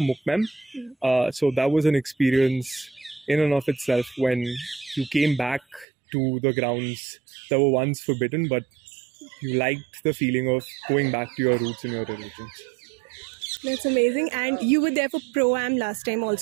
Mukmem. So that was an experience in and of itself, when you came back to the grounds that were once forbidden, but you liked the feeling of going back to your roots and your religions. That's amazing. And you were there for ProAm last time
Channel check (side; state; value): left; drops out; at 5.9 s